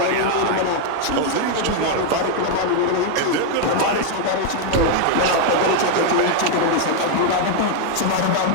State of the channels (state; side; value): different; both; correlation 0.00